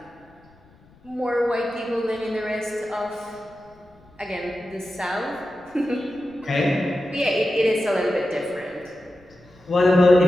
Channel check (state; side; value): noise; left; rumble, 29 dB below the sound